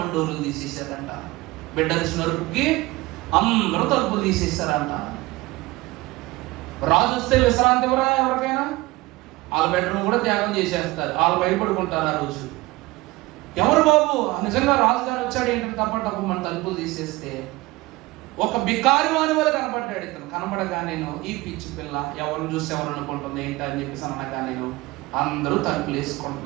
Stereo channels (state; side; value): quieter; left; 20.7 dB